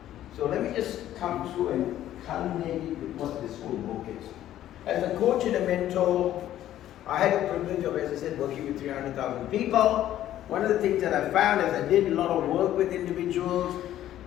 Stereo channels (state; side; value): quieter; right; 12.6 dB